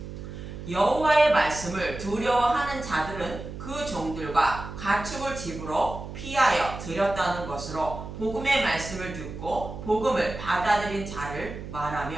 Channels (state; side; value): noise; right; hum, 10 dB below the sound